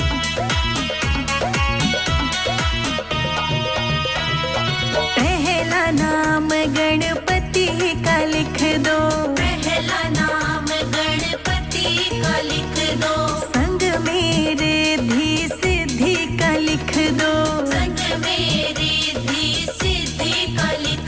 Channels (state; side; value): identical; both; correlation 1.00